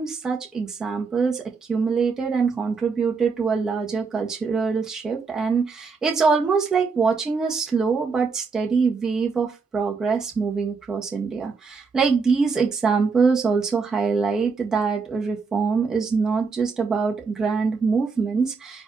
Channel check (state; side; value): quieter; left; 4.9 dB